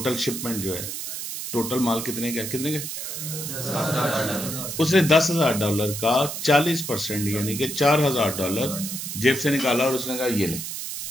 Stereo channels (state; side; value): noise; right; hiss, 6 dB below the sound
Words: शिपमेंट जो है, टोटल माल कितने का, कितने का? उसने $10,000 का 40% यानी कि $4,000 जेब से निकाला और उसने कहा ये ले।